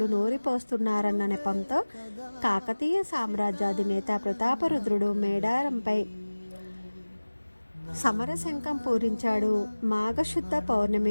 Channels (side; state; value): both; inverted; correlation -1.00